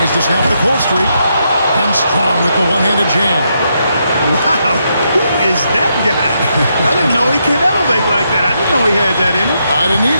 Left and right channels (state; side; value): inverted; both; correlation -0.80